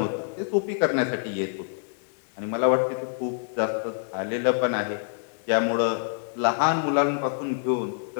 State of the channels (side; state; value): right; silent; digital silence